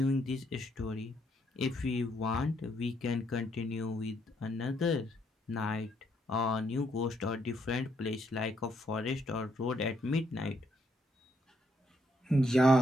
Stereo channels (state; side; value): normal; both; correlation 0.74